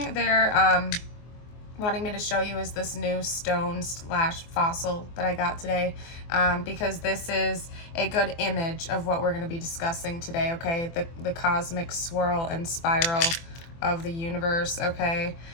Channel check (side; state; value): right; late; 24 ms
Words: they're wanting me to show you is this new stone/fossil that I got today, because this is a good image of what we're going to be discussing today, okay? The cosmic swirl and spiral of the universe, okay?